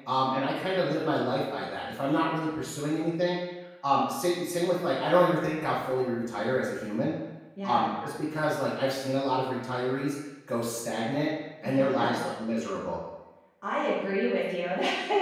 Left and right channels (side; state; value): both; identical; correlation 1.00